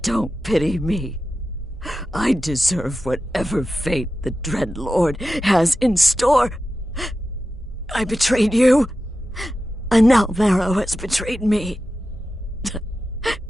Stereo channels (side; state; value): both; normal; correlation 0.92